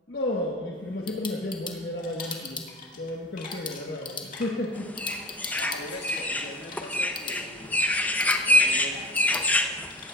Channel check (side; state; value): both; normal; correlation 0.34